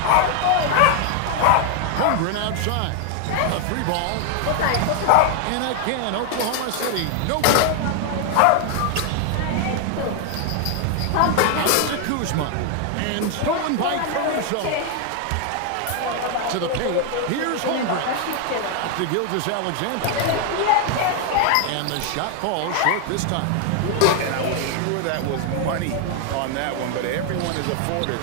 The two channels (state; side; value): different; both; correlation 0.00